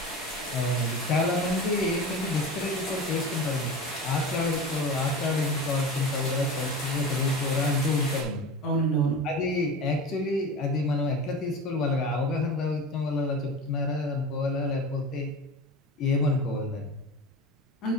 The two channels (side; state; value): both; normal; correlation 0.30